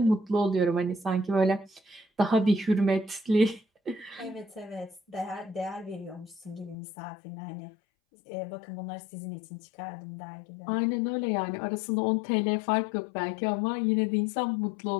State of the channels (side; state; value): right; drops out; at 6.8 s